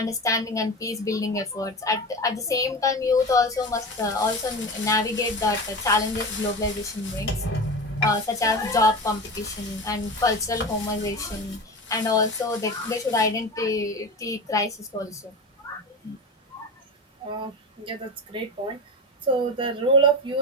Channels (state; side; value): normal; both; correlation 0.26